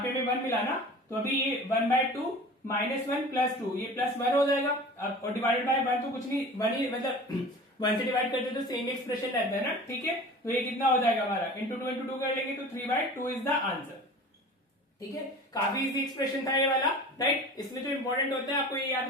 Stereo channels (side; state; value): both; normal; correlation 0.39